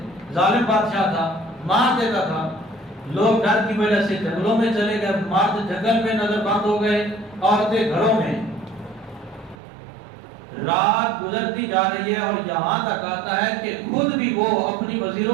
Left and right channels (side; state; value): left; drops out; at 9.6 s